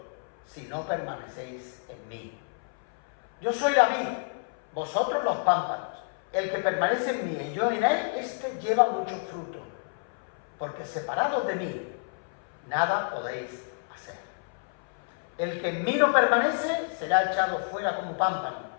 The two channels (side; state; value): right; silent; 58 dB below the other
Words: si no permanecéis en mí. Yo soy la vid, vosotros los pámpanos. El que permanece en mí y yo en él, éste lleva mucho fruto, porque separados de mí, nada podéis hacer. El que en mí no permanece será echado fuera como pámpano